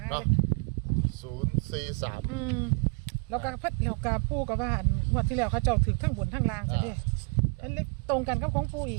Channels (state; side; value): quieter; left; 34.6 dB